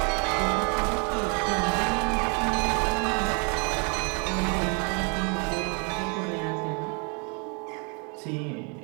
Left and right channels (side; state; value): left; quieter; 35.2 dB